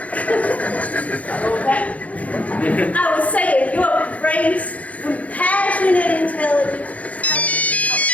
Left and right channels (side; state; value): right; late; 0.068 ms